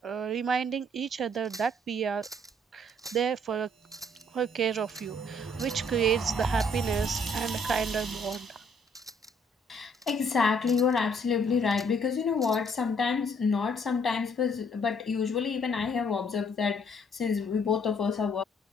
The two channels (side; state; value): both; normal; correlation 0.64